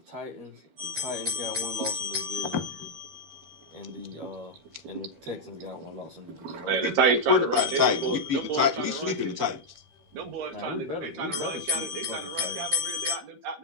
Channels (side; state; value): left; late; 13 ms